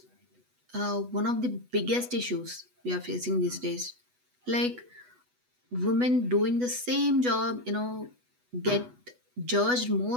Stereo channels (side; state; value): left; late; 8.1 ms